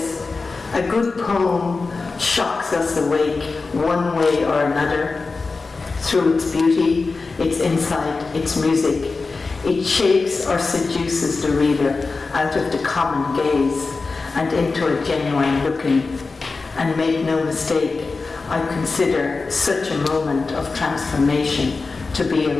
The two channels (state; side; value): quieter; right; 4.0 dB